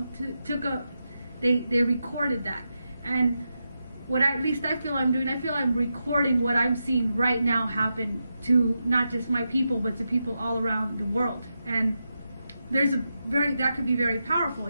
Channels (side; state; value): both; inverted; correlation -0.87